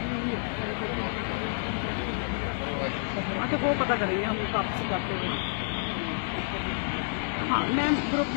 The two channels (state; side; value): silent; right; digital silence